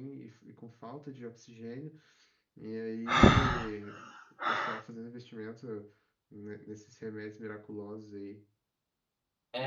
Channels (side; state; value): both; identical; correlation 1.00